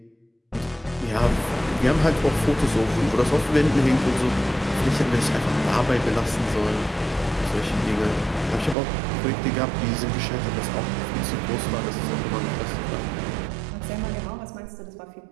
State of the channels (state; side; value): drops out; left; at 8.8 s